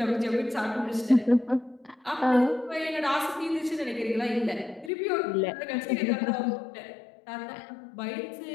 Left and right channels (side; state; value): right; drops out; at 4.9 s